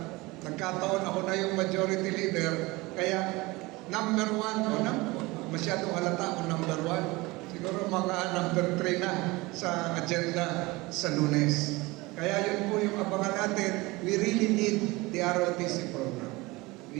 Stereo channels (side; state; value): left; quieter; 22.4 dB